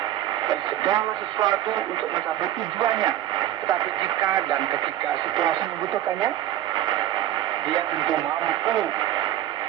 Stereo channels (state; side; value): quieter; left; 12.5 dB